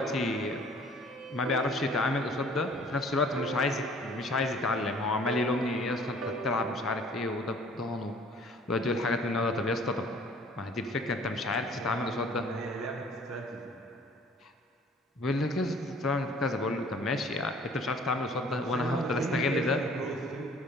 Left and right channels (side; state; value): both; normal; correlation 0.53